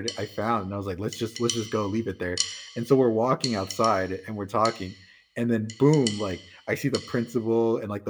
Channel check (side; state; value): both; identical; correlation 1.00